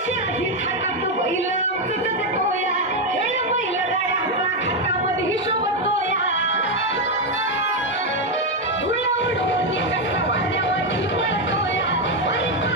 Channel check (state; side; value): normal; both; correlation 0.05